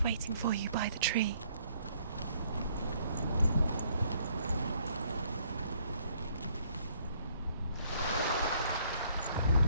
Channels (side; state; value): both; inverted; correlation -0.65